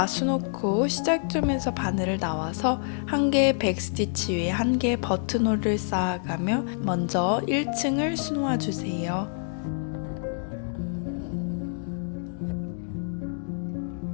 수놓고 시작점에서 바늘을 나와서 한 개의 백스티치 위에 한 개의 버튼홀을 쌓아가며 먼저 1층을 수놓아 주세요.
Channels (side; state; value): right; silent; digital silence